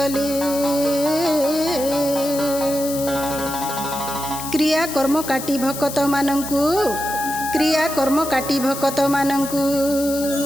क्रिया कर्म काटी भक्त मानंकु क्रिया कर्म काटी भक्त मानंकु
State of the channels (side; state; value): left; noise; hiss, 9 dB below the sound